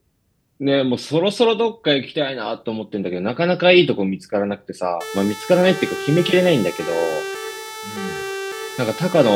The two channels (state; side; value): identical; both; correlation 1.00